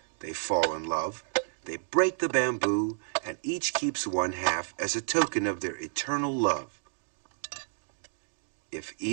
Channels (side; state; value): left; silent; digital silence